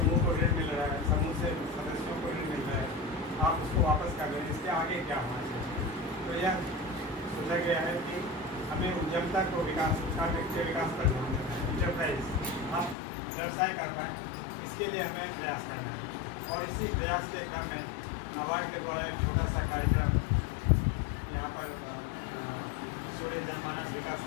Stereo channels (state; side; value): drops out; right; at 13.0 s